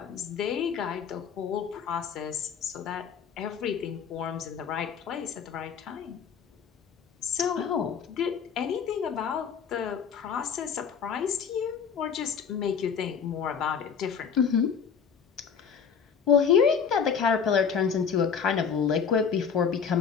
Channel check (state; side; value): quieter; right; 6.8 dB